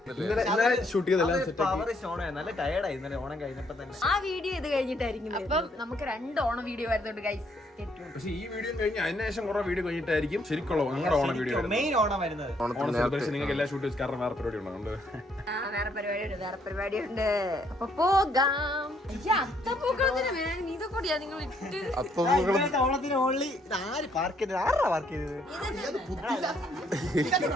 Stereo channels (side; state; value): both; normal; correlation 0.69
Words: ഷൂട്ട് ചെയ്തെല്ലാം നല്ല ടയർഡായി ഇന്നലെ ഓണം കഴിഞ്ഞപ്പോ തന്നെ. ആ വീഡിയോ ഇത് കഴിഞ്ഞിട്ടായിരിക്കും. അപ്പം നമുക്ക് 2 ഓണം വീഡിയോ വരുന്നുണ്ട് ഗൈസ്. പക്ഷെ ഈ വീഡിയോ കഴിഞ്ഞ് അതിനുശേഷം കുറെ വീഡിയോ കഴിഞ്ഞിട്ടായിരിക്കും ശരിക്കുള്ള ഞങ്ങളുടെ ഓണം വീഡിയോ മെയിൻ ഓണം വരുന്നത്. ഓണം സെലിബ്രേഷൻ നിങ്ങൾക്ക് എല്ലാ ഷൂട്ട് വെച്ച് കാരണം വേറെ പരിപാടി ഉണ്ടോ? വേറെ പരിപാടിയുണ്ട്. അപ്പൊ പോകാം. ഇതൊക്കെ നിങ്ങൾ ഇട്ട് ഓണത്തിന് ഓൺലി ആര് പാർക്ക് ചെയ്തത്? ആരാ പാർക്ക് ചെയ്തത്?